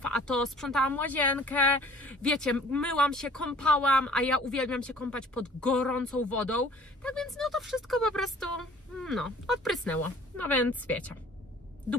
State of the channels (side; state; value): both; normal; correlation 0.51